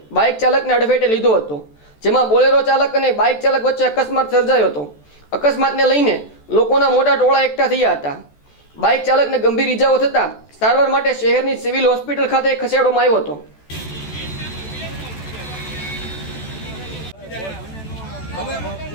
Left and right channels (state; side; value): late; right; 14 ms